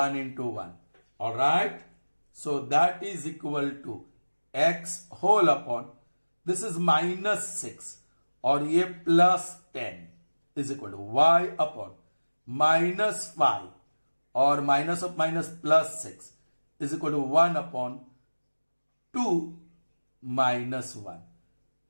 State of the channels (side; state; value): both; inverted; correlation -1.00